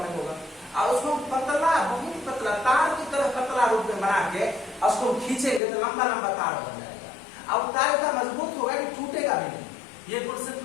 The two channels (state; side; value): drops out; right; at 5.6 s